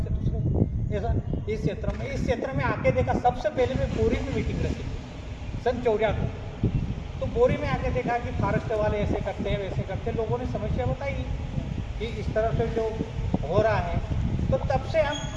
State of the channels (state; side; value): identical; both; correlation 1.00